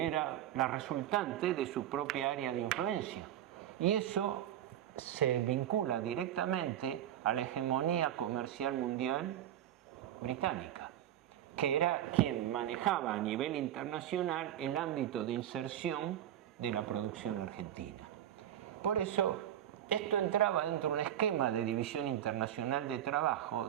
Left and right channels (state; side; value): quieter; left; 11.4 dB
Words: era la resultante de su propia área de influencia. Y eso se vincula directamente a la hegemonía comercial mundial británica, que era quien manejaba a nivel internacional el ámbito de inserción de la producción argentina. Por eso, esto entraba dentro de un esquema de división internacional de trabajo